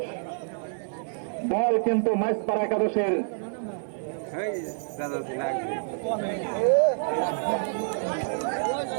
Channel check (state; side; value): silent; left; 60 dB below the other